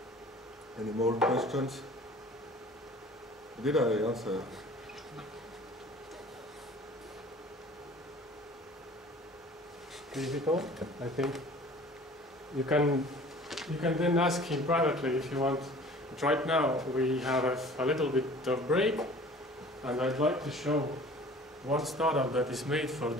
Any more questions? Did I answer? Difficult, I think. You can then ask him privately if you want. But right now we have a little bit of break, and I'd like to show one startup that is made for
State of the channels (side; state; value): both; normal; correlation 0.46